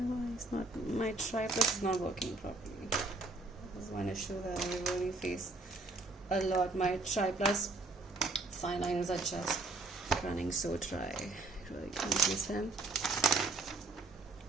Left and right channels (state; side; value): quieter; left; 3.3 dB